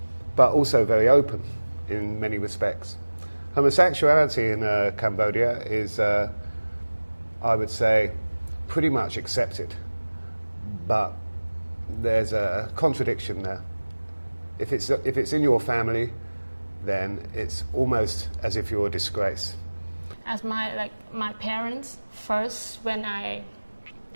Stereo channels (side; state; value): both; inverted; correlation -1.00